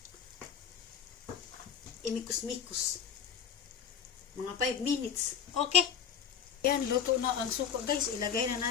imikos-mikos. Mga 5 minutes. Okay. Yan, luto na ang suka guys. Ilagay na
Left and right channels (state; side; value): quieter; right; 7.7 dB